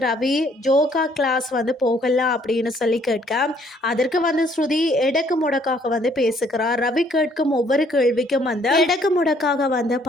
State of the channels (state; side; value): normal; both; correlation 0.64